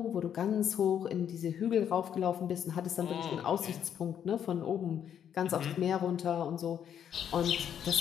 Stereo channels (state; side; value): quieter; right; 9.0 dB